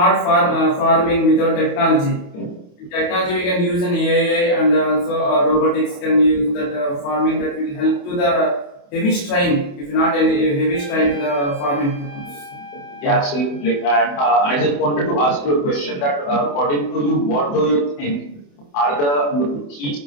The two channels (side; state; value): right; late; 28 ms